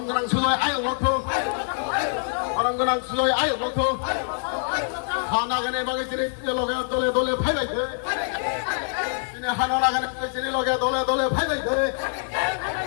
그랑 수도에 아유 놓고 바람 그랑 수도에 아유 놓고 하나 가네 바게 지리 로게 돌에 돌에 파이바이 돼 지네 하나 나가네 지리 로게 돌에 돌에 파이바이 돼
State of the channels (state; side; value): silent; right; digital silence